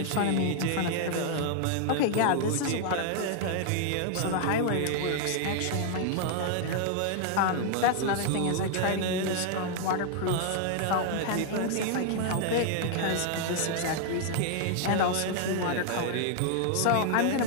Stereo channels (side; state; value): both; different; correlation 0.00